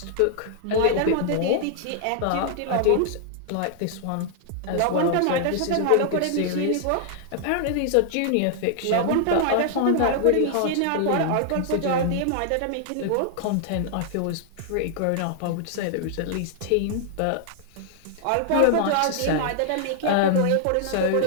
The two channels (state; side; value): different; both; correlation -0.01